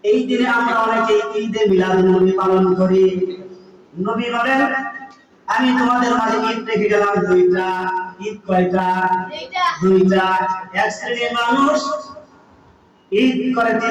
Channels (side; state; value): both; identical; correlation 1.00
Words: এই দিনে আমরা অনেকে ঈদে মিলাদুন নবী পালন করি। নবী বলেন, আমি তোমাদের মাঝে ঈদ রেখে গেলাম দুইটা। ঈদ কয়টা? দুইটা। এক শ্রেণীর মানুষ ঈদ করে